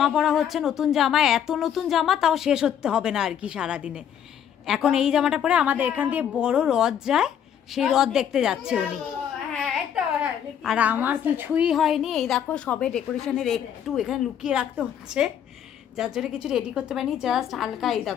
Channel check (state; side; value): quieter; right; 9.1 dB